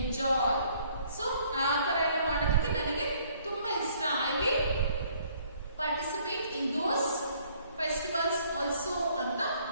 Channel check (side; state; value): both; inverted; correlation -0.62